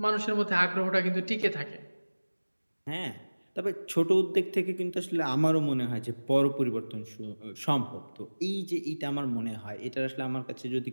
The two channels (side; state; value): both; inverted; correlation -1.00